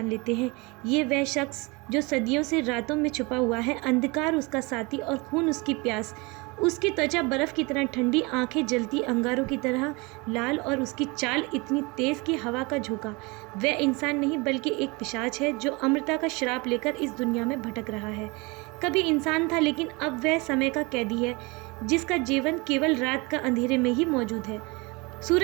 लेते हैं। ये वह शख्स जो सदियों से रातों में छुपा हुआ है, अंधकार उसका साथी और खून उसकी प्यास। उसकी त्वचा बर्फ की तरह ठंडी, आंखें जलती अंगारों की तरह लाल और उसकी चाल इतनी तेज कि हवा का झोंका। वह इंसान नहीं बल्कि एक पिशाच है जो अमरता का श्राप लेकर इस दुनिया में भटक रहा है। कभी इंसान था, लेकिन अब वह समय का कैदी है जिसका जीवन केवल रात का अंधेरे में ही मौजूद है।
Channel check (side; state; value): left; quieter; 26.8 dB